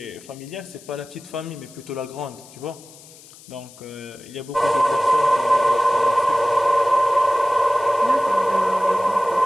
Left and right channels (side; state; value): left; noise; hiss, 22 dB below the sound